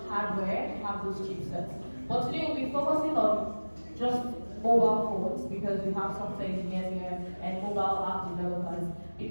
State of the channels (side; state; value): both; inverted; correlation -1.00